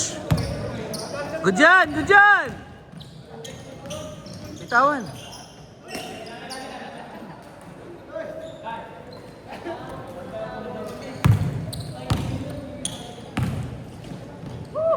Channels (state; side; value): identical; both; correlation 1.00